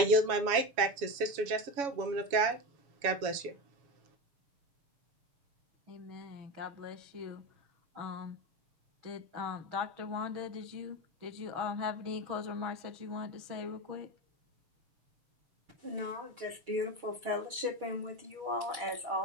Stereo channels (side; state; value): left; late; 7.2 ms